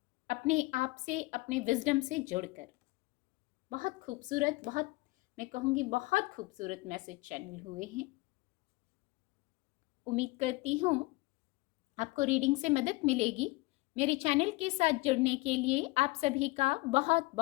अपने आप से, अपने विजडम से जुड़कर। बहुत खूबसूरत, बहुत, मैं कहूँगी बहुत खूबसूरत मैसेज चैनल हुए हैं। उम्मीद करती हूँ आपको रीडिंग से मदद मिलेगी। मेरे चैनल के साथ जुड़ने के लिए आप सभी का बहुत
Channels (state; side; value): quieter; right; 23.2 dB